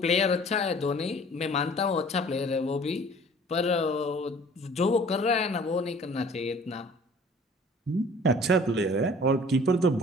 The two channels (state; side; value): normal; both; correlation 0.50